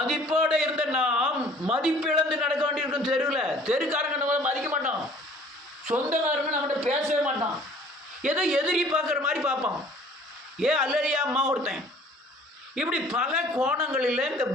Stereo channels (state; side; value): normal; both; correlation 0.52